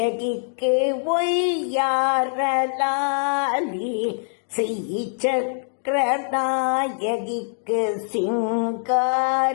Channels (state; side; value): silent; right; digital silence